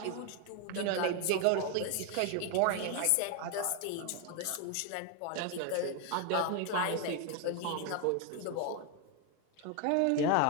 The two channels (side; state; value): both; different; correlation 0.01